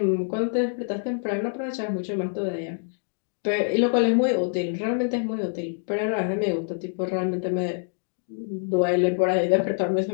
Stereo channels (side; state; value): right; silent; digital silence